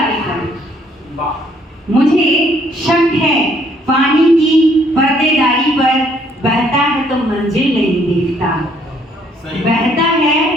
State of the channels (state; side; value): normal; both; correlation 0.66